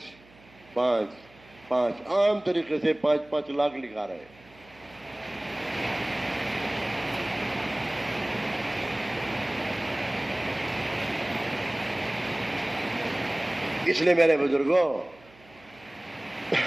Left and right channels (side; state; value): right; noise; hum, 26 dB below the sound